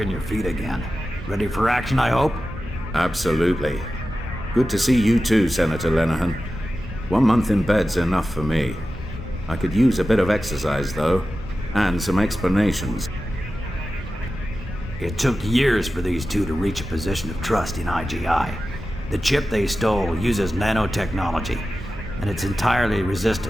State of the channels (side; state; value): both; normal; correlation 0.94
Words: your feet again. Ready for action, I hope? Absolutely. Good to see you too, Senator Lenehan. 1 month in bed's enough for me. I could use a bit of exercise, though, and some explanations. It took years for these two to reach a position of trust in I.G.I. The chip they stole uses nanotechnology, and it's entirely